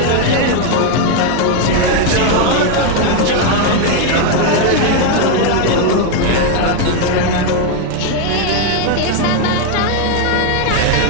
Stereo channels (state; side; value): different; both; correlation 0.01